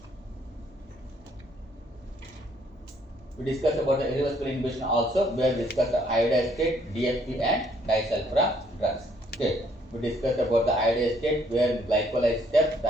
We discussed about the irreversible inhibition also, where we discussed the iodide state, DFP and disulfiram drugs. Okay. We discussed about the iodide state, where in glycolyzed step, the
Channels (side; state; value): both; normal; correlation 0.66